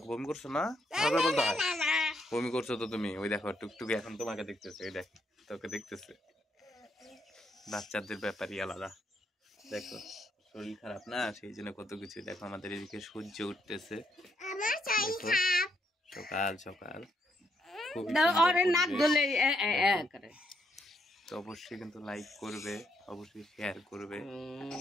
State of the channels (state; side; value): normal; both; correlation 0.76